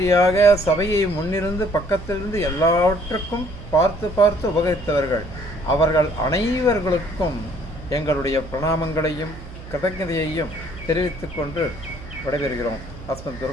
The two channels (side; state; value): right; noise; hum, 15 dB below the sound